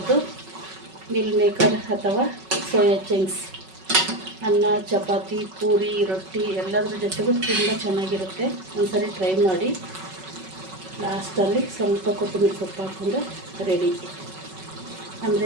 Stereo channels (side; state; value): left; late; 5.3 ms